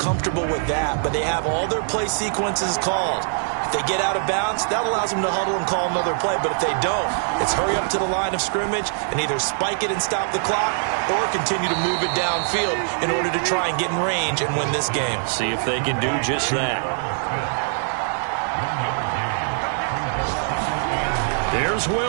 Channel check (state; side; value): silent; left; 64 dB below the other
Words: with that, but they have all their play sequences called. If they get out of bounds, that allows them to huddle and call another play. But if they don't, it's hurry up to the line of scrimmage and either spike it and stop the clock or continue to move it downfield in order to try and get in range and win this game. See if they can do just that. There's